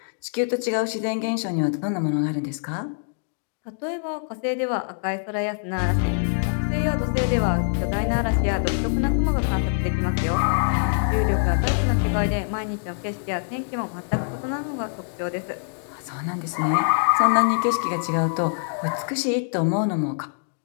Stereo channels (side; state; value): right; silent; digital silence